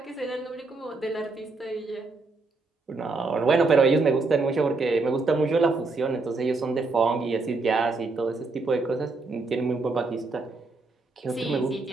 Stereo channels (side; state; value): left; quieter; 3.7 dB